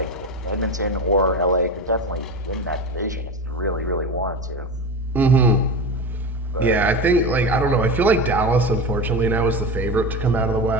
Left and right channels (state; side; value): normal; both; correlation 0.24